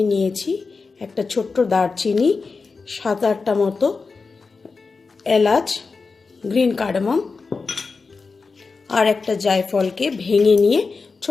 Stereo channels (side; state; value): right; quieter; 4.4 dB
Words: নিয়েছি একটা ছোট্ট দারচিনি, 7-8টা মতো এলাচ, গ্রিন কার্ডামম, আর একটা জায়ফলকে ভেঙে নিয়ে